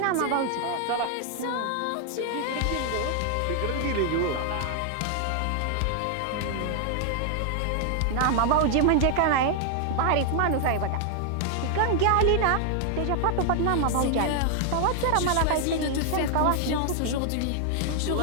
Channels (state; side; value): different; both; correlation 0.00